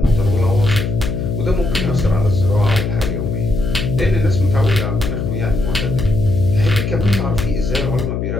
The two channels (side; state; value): left; noise; hum, 2 dB below the sound